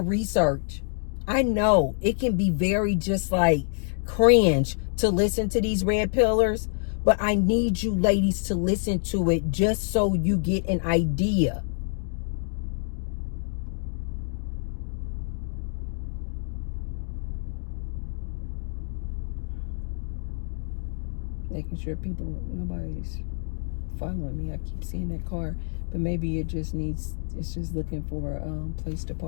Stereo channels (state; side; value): silent; right; digital silence